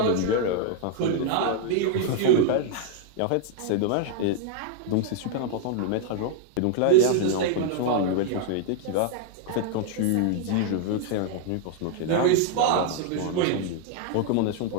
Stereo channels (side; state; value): both; different; correlation 0.00